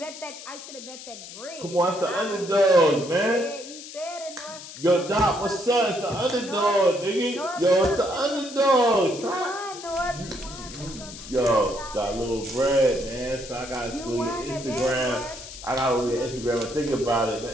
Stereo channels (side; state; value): left; noise; hiss, 13 dB below the sound